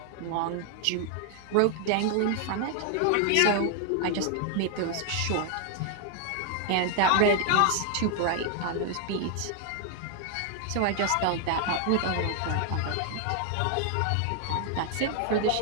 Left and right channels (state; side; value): different; both; correlation 0.00